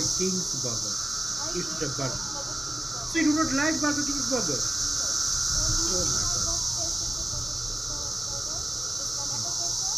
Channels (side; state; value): both; normal; correlation 0.97